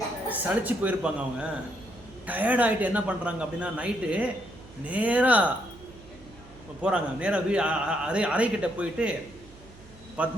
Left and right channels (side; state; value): right; noise; hum, 22 dB below the sound